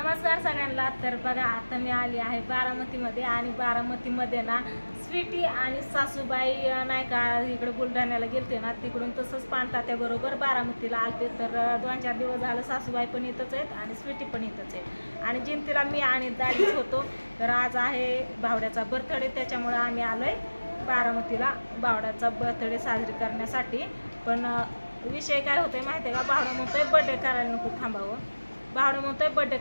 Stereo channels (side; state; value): both; inverted; correlation -1.00